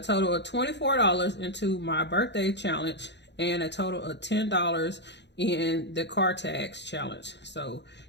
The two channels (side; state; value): right; late; 0.51 ms